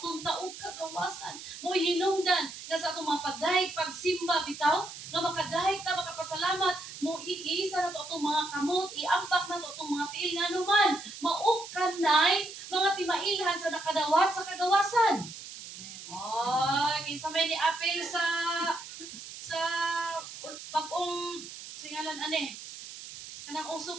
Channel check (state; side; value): noise; right; hiss, 12 dB below the sound